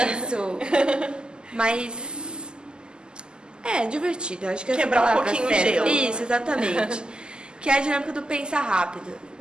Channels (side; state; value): left; late; 0.047 ms